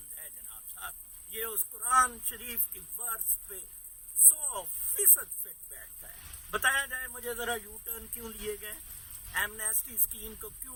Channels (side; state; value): both; identical; correlation 1.00